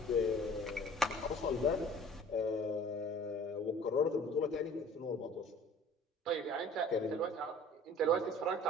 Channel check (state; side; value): normal; both; correlation 0.47